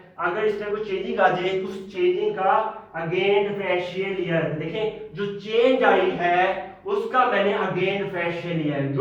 अगर इस तरह कोई चेंजिंग आ जाए तो उस चेंजिंग का अगेन डिफरेंशियल लिया है। देखें जो चेंज आई है उसका मैंने अगेन डिफरेंशियल लिया है,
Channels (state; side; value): identical; both; correlation 1.00